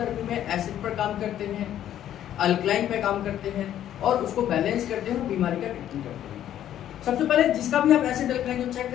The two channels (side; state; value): right; quieter; 11.3 dB